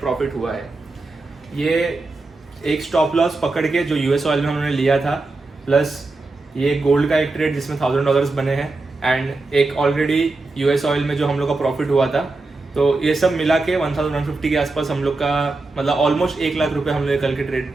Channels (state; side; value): quieter; left; 3.4 dB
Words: हुआ है। ये एक स्टॉप लॉस पकड़ के जो US ऑयल में उन्होंने लिया था, प्लस ये गोल्ड का एक ट्रेड जिसमें $1000 बने हैं, एंड एक ऑलरेडी US ऑयल में जो हम लोग का प्रॉफिट हुआ था। तो ये सब मिला के 1150 के आसपास हम लोग का, मतलब ऑलमोस्ट 1 लाख रुपए हम लोग कल के